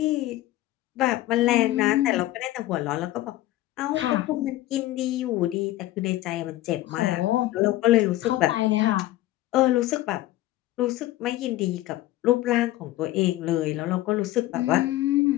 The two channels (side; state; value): right; quieter; 16.0 dB